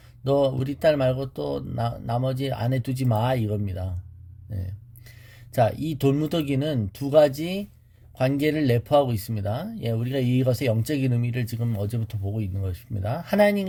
너 우리 딸 말고 또 나머지 아내 두지 마, 이겁니다. 네. 자, 이 돌무더기는 두 가지 관계를 내포하고 있습니다. 예, 우리가 이것의 영적인 의미를 지금 어제부터 보고 있는 것입니다.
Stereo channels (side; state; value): both; identical; correlation 1.00